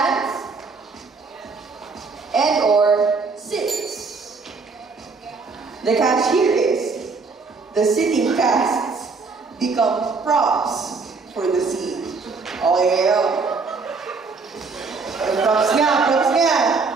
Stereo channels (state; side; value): quieter; left; 4.4 dB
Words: and or sits. The catch here is the sitting casts become props for the scene. Okay, props nga.